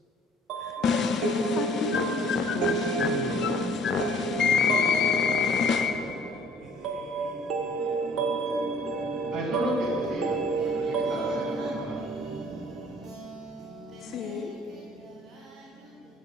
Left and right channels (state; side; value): normal; both; correlation 0.54